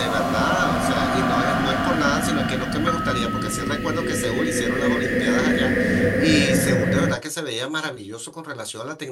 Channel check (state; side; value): identical; both; correlation 1.00